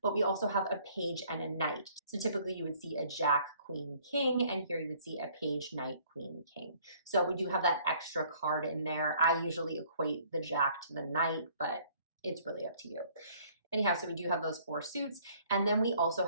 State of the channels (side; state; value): both; inverted; correlation -0.59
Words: but we also have a page and a knight. So typically you would see a jack, queen, king, and here you would see a page, knight, queen, king. So we do have that extra card in there. I usually equate the jack to the knight, but it's really up to you. Anyhow, so we do have those 4 suits, and then we also